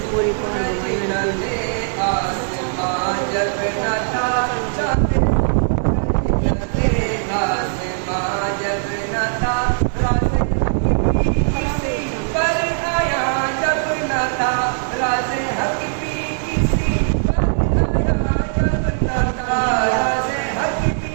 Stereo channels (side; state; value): left; silent; 66 dB below the other